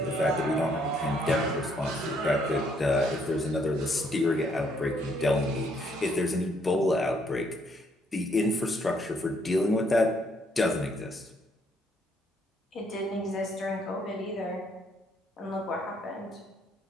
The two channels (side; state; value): both; normal; correlation 0.69